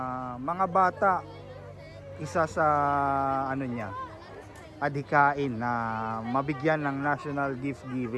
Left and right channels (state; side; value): identical; both; correlation 1.00